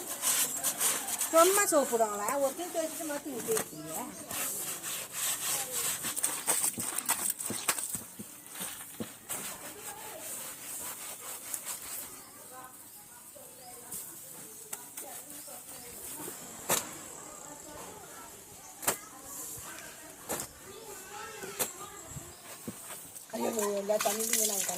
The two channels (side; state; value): both; identical; correlation 1.00